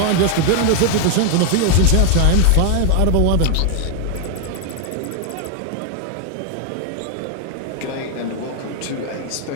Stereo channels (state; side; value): different; both; correlation 0.00